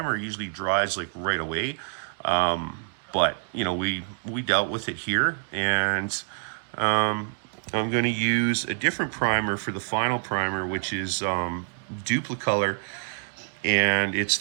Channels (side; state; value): left; silent; digital silence